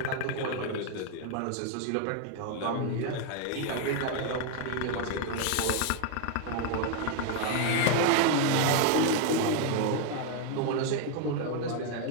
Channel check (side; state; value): both; different; correlation 0.01